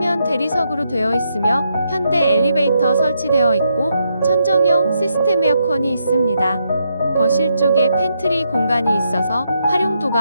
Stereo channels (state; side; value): inverted; both; correlation -0.79